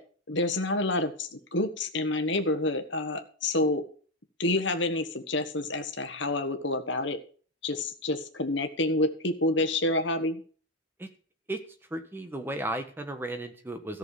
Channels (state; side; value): normal; both; correlation 0.08